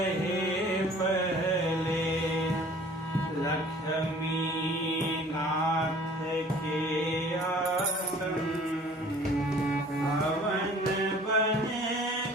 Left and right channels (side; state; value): both; normal; correlation 0.50